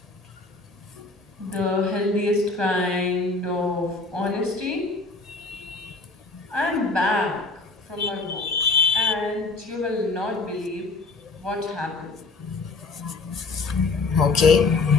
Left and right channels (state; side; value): quieter; right; 3.6 dB